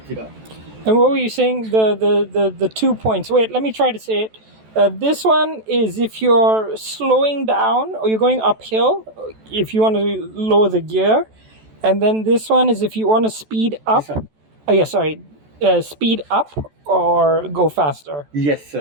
it up. And what were you saying? The 2 points. Wait, let me try to say it. This one is if you're slowing down or you're going uphill, if you want to lower the gear. And then this one is if you want to speed up. This one? Oh, yeah, sorry. Speed up or go faster. Yes,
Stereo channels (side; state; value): left; late; 14 ms